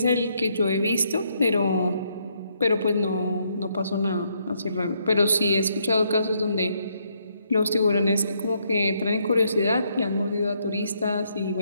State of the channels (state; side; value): inverted; both; correlation -0.74